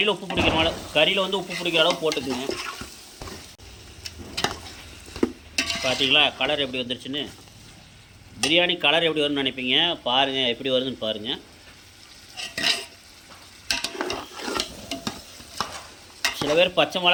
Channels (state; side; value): identical; both; correlation 1.00